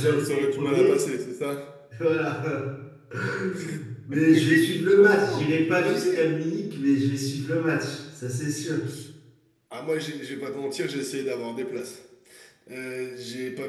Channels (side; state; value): both; identical; correlation 1.00